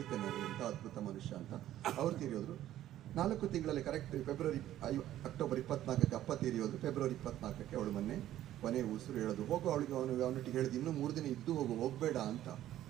ನಾನು, ಎಂಥ ಅದ್ಭುತ ಮನುಷ್ಯ ಅಂತ. ಅವ್ರು ತೀರಿ ಹೋದ್ರು 4 ತಿಂಗಳಲ್ಲಿ, ಕರೆಕ್ಟ್ ಅಕ್ಟೋಬರ್ 24ಕ್ಕೆ ಅಪ್ಪ ತೀರಿ ಹೋದ್ರು. ಫೆಬ್ರವರಿ 24ಕ್ಕೆ ಅವಳು ಮೊನ್ನೆ ಕೊನೆ ಉಸಿರು ಹೇಳೋದು. ಹೋಗು ಅವಳಿಗೆ ಅವನೊಟ್ಟಿಗೆ ಹೇಳಿದ್ದು, ಇನ್ನೂ 3 ದಿನ ಇದ್ದು ಹೋಗಬೇಡ ಅಂತ.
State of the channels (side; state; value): left; quieter; 12.9 dB